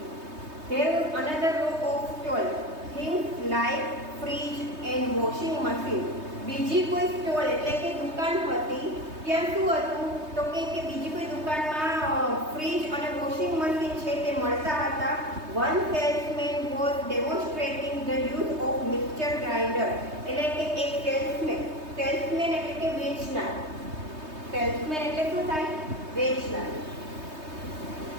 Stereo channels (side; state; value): left; late; 3.2 ms